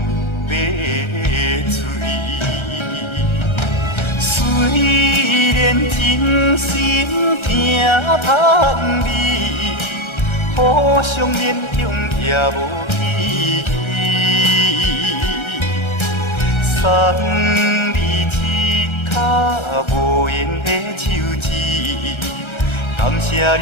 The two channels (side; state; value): right; late; 1.3 ms